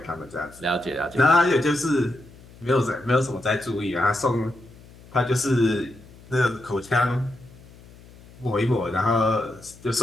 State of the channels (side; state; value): left; noise; hum, 22 dB below the sound